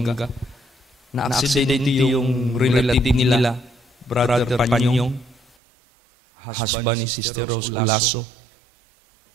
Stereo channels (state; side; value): drops out; left; at 5.6 s